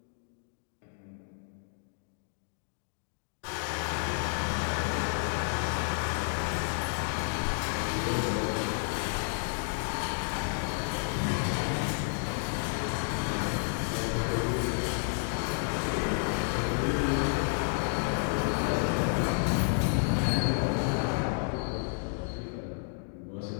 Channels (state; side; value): silent; right; 57 dB below the other